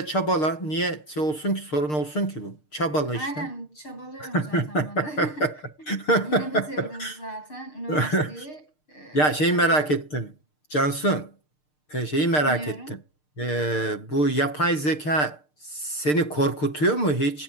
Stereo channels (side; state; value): right; late; 6.6 ms